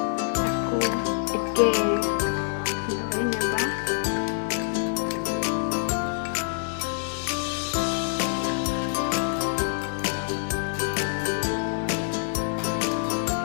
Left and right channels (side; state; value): right; silent; 59 dB below the other